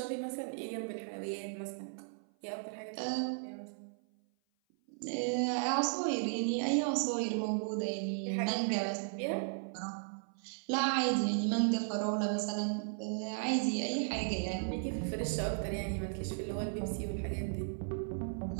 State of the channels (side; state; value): left; silent; 54 dB below the other